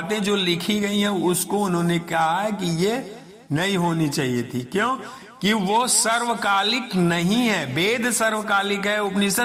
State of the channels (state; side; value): identical; both; correlation 1.00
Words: जो लिखी गई हैं उसको उन्होंने कहा है कि ये नहीं होनी चाहिए थी। क्यों? कि वो सर्वकालिक नहीं है। वेद सर्वकालिक है,